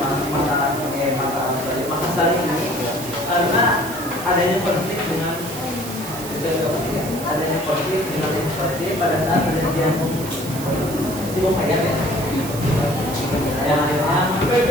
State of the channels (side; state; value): right; noise; hiss, 11 dB below the sound